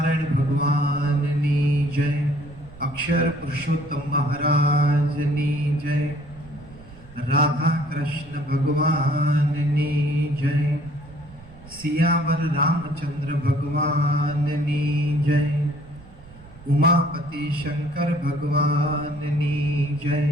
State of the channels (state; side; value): noise; right; rumble, 20 dB below the sound